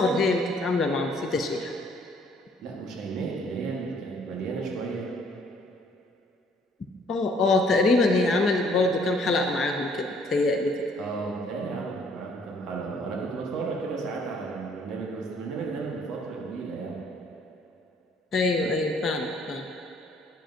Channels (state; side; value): normal; both; correlation 0.61